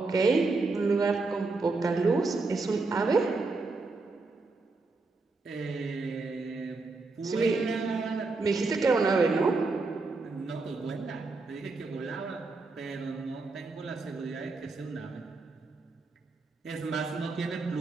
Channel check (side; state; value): left; quieter; 3.7 dB